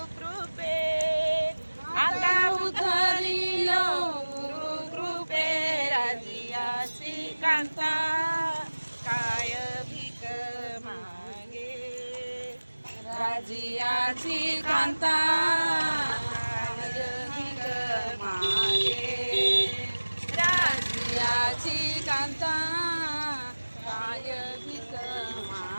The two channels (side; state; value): both; inverted; correlation -1.00